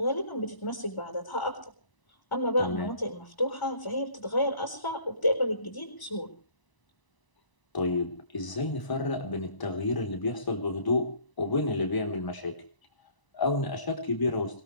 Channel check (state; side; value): late; right; 1.0 ms